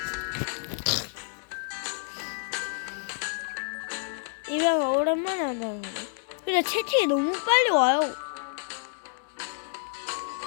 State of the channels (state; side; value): silent; right; digital silence